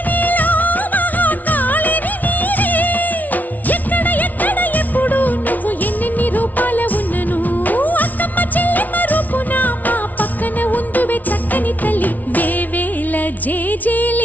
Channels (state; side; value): late; right; 0.077 ms